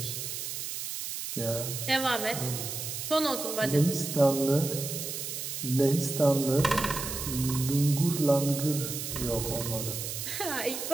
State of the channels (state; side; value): noise; right; hiss, 5 dB below the sound